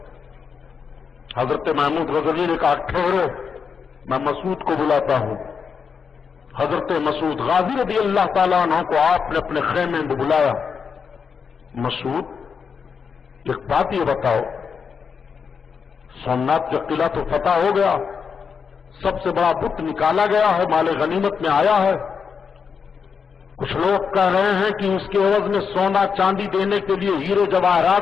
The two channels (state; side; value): quieter; right; 6.1 dB